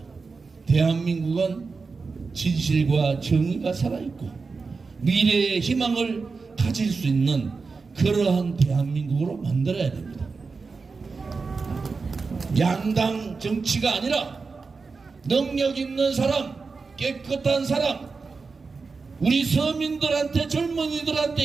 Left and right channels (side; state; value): left; quieter; 4.5 dB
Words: 대한민국은 진실과 정의가 살아있고 미래의 희망을 가질 수 있는 그러한 대한민국으로 만들어야 됩니다. 양당 정치가 아니라 능력 있는 사람, 깨끗한 사람, 우리 서민들한테, 젊은이들한테